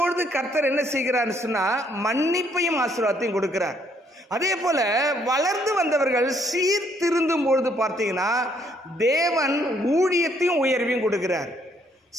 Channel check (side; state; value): both; normal; correlation 0.68